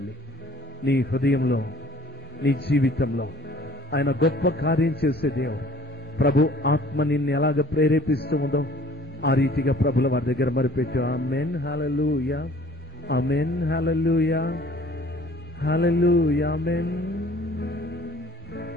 నీ హృదయంలో, నీ జీవితంలో ఆయన గొప్ప కార్యం చేసే దేవుడు. ప్రభు ఆత్మ నిన్ను ఎలాగ ప్రేరేపిస్తూ ఉందో ఆ రీతిగా ప్రభుల వారి దగ్గర మరిపెట్టు. ఆమేన్. హల్లెలూయా. ఆమేన్. హల్లెలూయా. హల్లెలూయా. ఆమేన్.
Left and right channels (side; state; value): both; normal; correlation 0.53